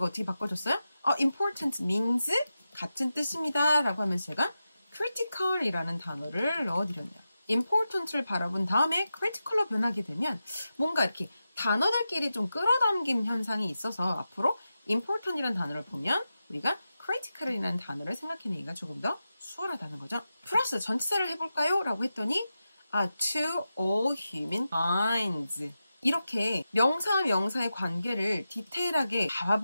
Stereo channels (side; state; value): both; inverted; correlation -0.91